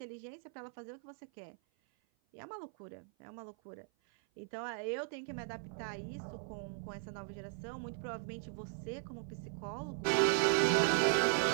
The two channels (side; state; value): left; silent; 52 dB below the other